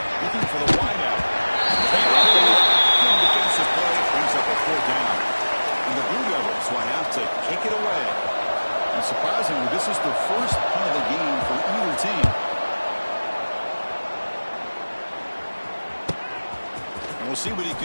for the wideout. Good defensive play brings up a 4th down. And the Blue Devils will have to kick it away. And surprisingly, this is the first punt of the game for either team. And we'll see what he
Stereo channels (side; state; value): both; inverted; correlation -1.00